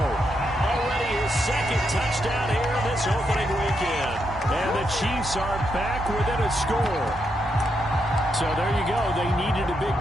Already his 2nd touchdown here this opening weekend. And the Chiefs are back within a score. So there you go. They needed a big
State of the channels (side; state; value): both; normal; correlation 0.81